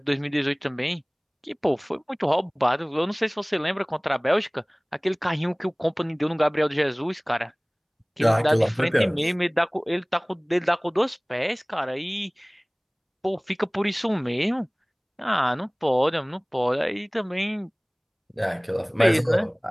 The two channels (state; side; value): identical; both; correlation 1.00